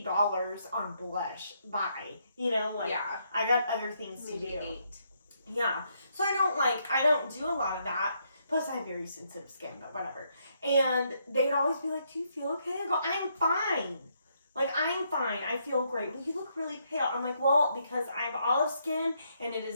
on blush. Bye. You know, like, yeah. I got other things Maybe to do. 8. Yeah. So I don't do a lot of that. Plus, I have very sensitive skin, but whatever. And they'd always be like, do you feel okay? I go, I'm fine. Like, I'm fine. I feel great. Well, you look really pale. I'm like, well, because I have olive skin, and it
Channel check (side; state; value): both; inverted; correlation -0.75